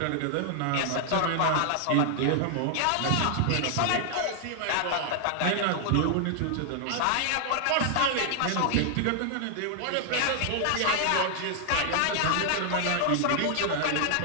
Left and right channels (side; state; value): both; different; correlation 0.00